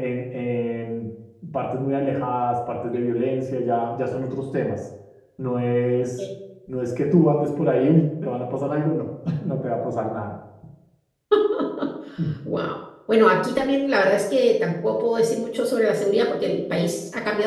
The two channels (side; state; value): both; identical; correlation 1.00